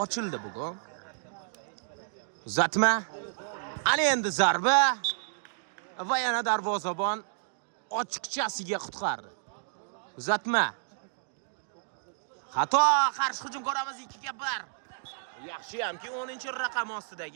ochildi bugun. Uzatma. Ana endi zarba va yana darvozabon ochiqchasiga qutqardi. Uzatma. Xato, qarshi hujum ko'ramiz 2-1. Yaxshi hamki 10-raqam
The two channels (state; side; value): silent; left; digital silence